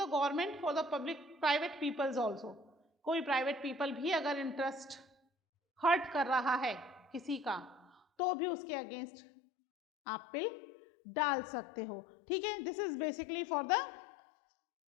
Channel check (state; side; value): drops out; right; at 8.0 s